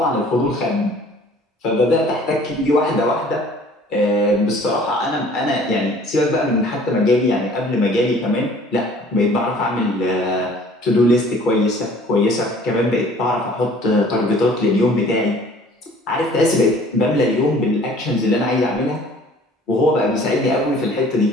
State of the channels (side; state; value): both; normal; correlation 0.52